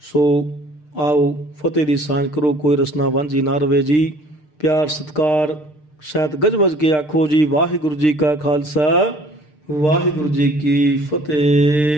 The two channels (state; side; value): late; right; 6.6 ms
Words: ਸੋ ਆਓ ਫਤਿਹ ਦੀ ਸਾਂਝ ਕਰੋ, ਕੋਈ ਰਸਨਾ ਵਾਂਝੀ ਨਾ ਰਵੇ ਜੀ। ਪਿਆਰ ਸਤਿਕਾਰ ਸਹਿਤ ਗੱਜ ਵੱਜ ਕੇ ਆਖੋ ਜੀ, ਵਾਹਿਗੁਰੂ ਜੀ ਕਾ ਖਾਲਸਾ, ਵਾਹਿਗੁਰੂ ਜੀ ਕੀ